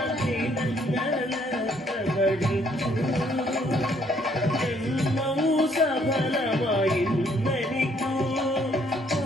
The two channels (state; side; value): normal; both; correlation 0.66